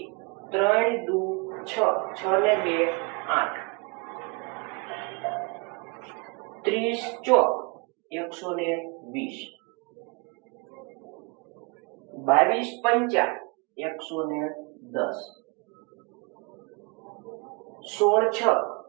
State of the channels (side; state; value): left; quieter; 30.3 dB